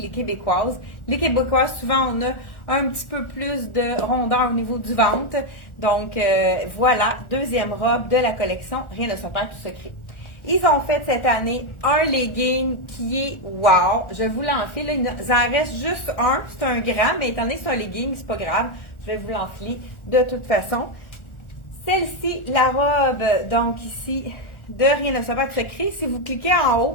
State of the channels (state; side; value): late; right; 1.4 ms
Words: les Québécoises. Les Québécoises, souvent, on a un petit peu plus de rondeur au niveau du ventre. Donc, voilà, deuxième robe de la collection Rien ne se perd, tout se crée. Ils ont fait cette année un legging qui est wow. Je vous l'enfile. Il en reste juste un. C'est un grand, mais étant donné que c'est un legging, c'est pas grave. Je vais vous l'enfiler de toute façon. Celle-ci, la robe, donc ici, de Rien ne se perd, tout se crée. Si vous cliquez en